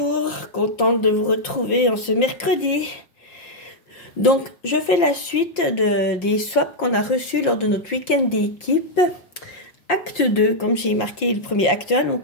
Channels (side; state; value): right; late; 5.7 ms